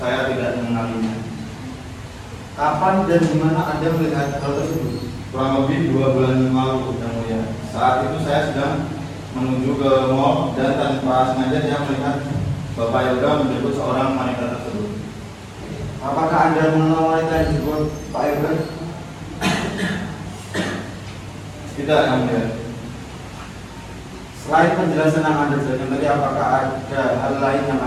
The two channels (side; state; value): both; identical; correlation 1.00